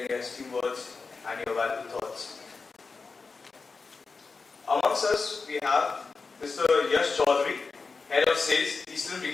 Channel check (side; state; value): right; quieter; 4.4 dB